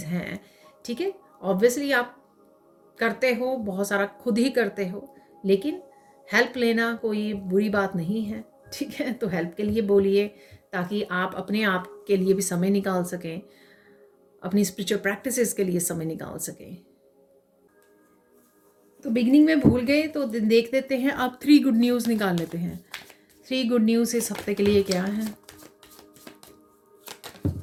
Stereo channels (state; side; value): identical; both; correlation 1.00